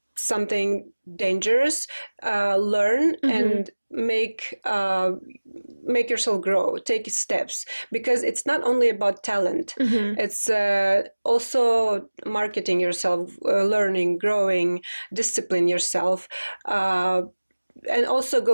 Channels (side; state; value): both; inverted; correlation -1.00